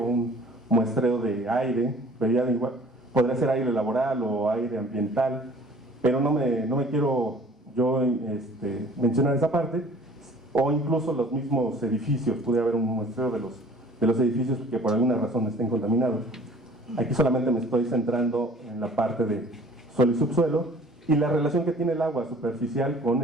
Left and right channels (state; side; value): normal; both; correlation 0.50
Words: muestreo de aire, podría ser aire laboral o aire ambiental, pero no me quiero yo mencionar esa parte, o incluso los mismos edificios, pudiera haber un muestreo de los edificios que por alguna razón estén contaminados. Aquí solamente me estoy centrando en la parte de suelo y subsuelo, y la relación que tiene el agua superficial con